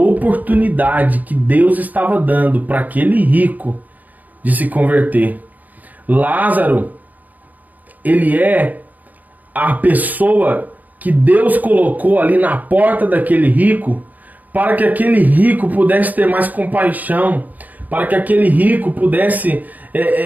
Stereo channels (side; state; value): left; late; 0.080 ms